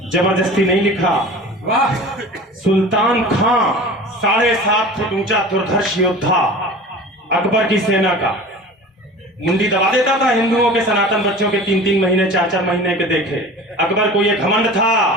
जबरदस्ती नहीं लिखा। वाह, सुल्तान खां 7.5 फुट ऊंचा दुर्धर्ष योद्धा, अकबर की सेना का, मुंडी दबा देता था हिंदुओं के सनातन बच्चों के 3-3 महीने 4-4 महीने के देखे। अकबर को यह घमंड था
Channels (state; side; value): normal; both; correlation 0.38